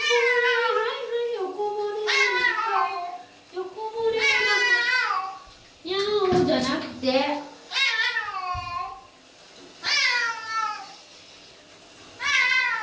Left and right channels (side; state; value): both; identical; correlation 1.00